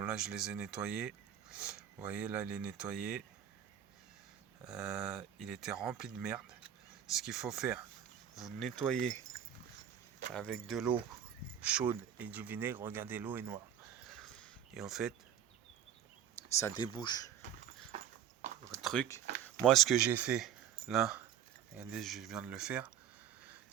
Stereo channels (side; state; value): left; quieter; 9.5 dB